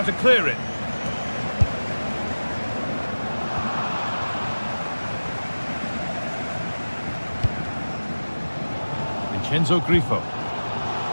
to clear it. Vincenzo Grifo.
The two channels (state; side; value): inverted; both; correlation -1.00